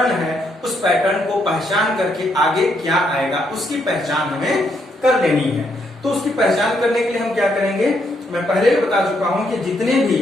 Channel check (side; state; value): both; normal; correlation 0.75